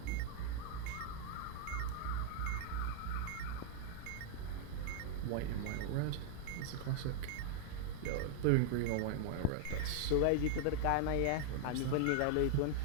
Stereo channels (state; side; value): different; both; correlation -0.01